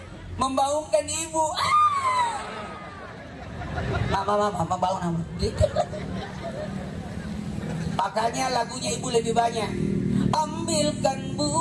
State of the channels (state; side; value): identical; both; correlation 1.00